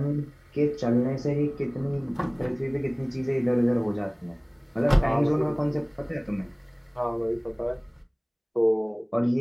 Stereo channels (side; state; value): both; identical; correlation 1.00